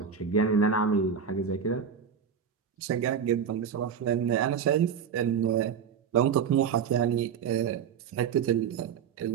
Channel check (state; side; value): quieter; left; 7.2 dB